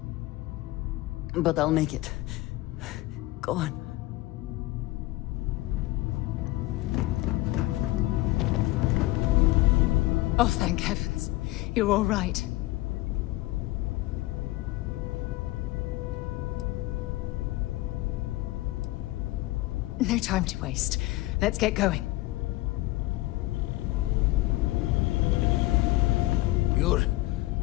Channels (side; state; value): right; quieter; 18.9 dB